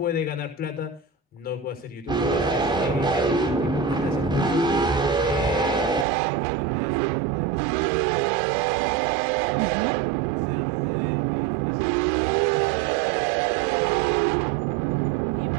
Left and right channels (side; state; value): left; drops out; at 6.1 s